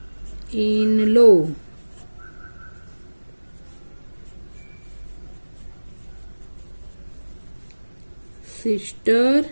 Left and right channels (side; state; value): both; inverted; correlation -1.00